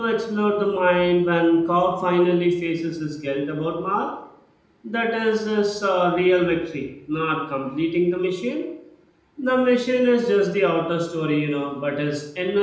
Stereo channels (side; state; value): both; identical; correlation 1.00